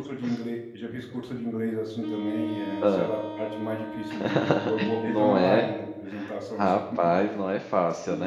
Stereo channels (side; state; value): both; identical; correlation 1.00